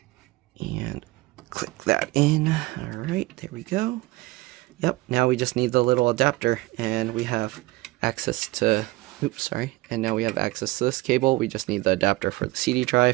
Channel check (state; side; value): quieter; left; 20.0 dB